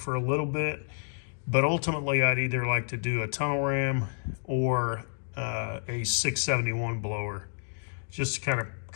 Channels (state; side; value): silent; right; digital silence